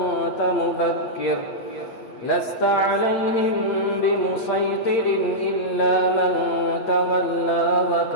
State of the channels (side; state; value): right; late; 8.7 ms